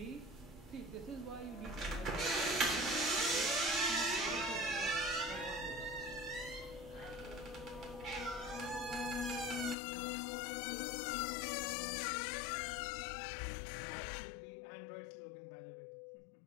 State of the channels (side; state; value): right; drops out; at 9.8 s